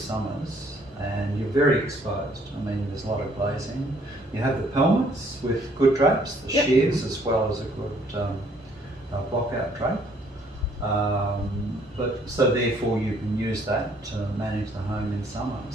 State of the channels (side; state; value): both; normal; correlation 0.64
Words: and you're very exposed. I mean, there's a lot of glazing. You have the pelmets with good drapes, the shears, as well as a good block-out drape. But so therefore you can use that to manage the home in summer.